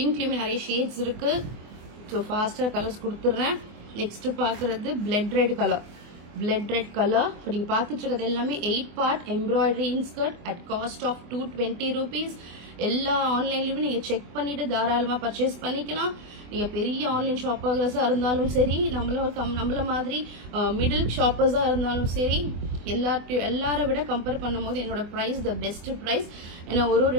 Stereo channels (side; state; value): left; late; 24 ms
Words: நிறைய ஷேட்ஸ் இருக்குது. ஸோ ஃபாஸ்ட்டாக கலர்ஸ் கொடுத்துட்றேன். நெக்ஸ்ட் பார்க்குறது blood red colour. Blood red colour. இப்போ நீங்கள் பார்த்துட்டு இருக்கிறது எல்லாமே 8 part embroidery inskirt at cost of 220 rupees. எல்லா ஆன்லைன்லையுமே நீங்கள் செக் பண்ணிவிட்டு தாராளமாக பர்ச்சேஸ் பண்ணிக்கலாம். நீங்கள் பெரிய ஆன்லைன் ஷாப்பர்ஸாக இருந்தாலும் சரி, நம்மள மாதிரி மிடில் ஷாப்பர்ஸாக இருந்தாலும் சரி, எல்லாரை விட கம்பேர் பண்ணும்போது என்னோட ப்ரைஸ் த பெஸ்ட் ப்ரைஸ். ஏன்னா ஒரு